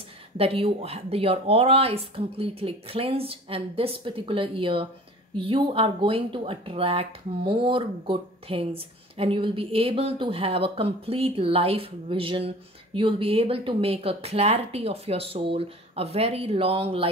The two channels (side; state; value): both; normal; correlation 0.43